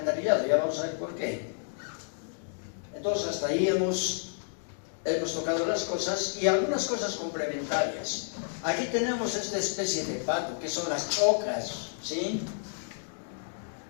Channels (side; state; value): right; silent; digital silence